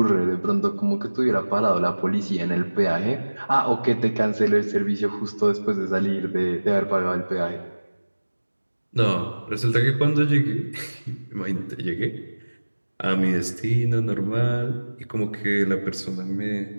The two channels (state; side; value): inverted; both; correlation -1.00